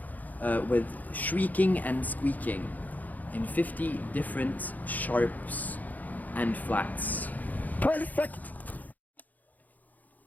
with shrieking and squeaking in 50 different sharps and flats. Perfect!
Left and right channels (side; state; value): right; late; 0.081 ms